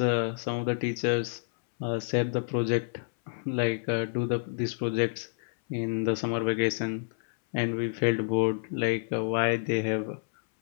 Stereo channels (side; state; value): right; silent; 59 dB below the other